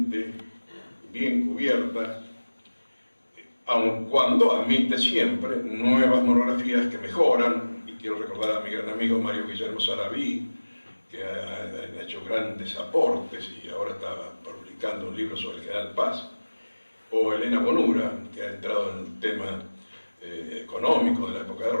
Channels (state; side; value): inverted; both; correlation -1.00